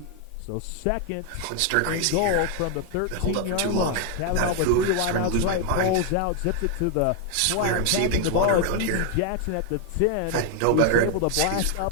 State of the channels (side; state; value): both; different; correlation 0.01